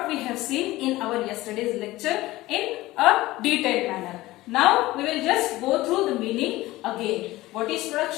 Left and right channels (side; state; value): right; quieter; 18.0 dB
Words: we have seen in our yesterday's lecture in a detailed manner. Now we will just go through the meaning again. What is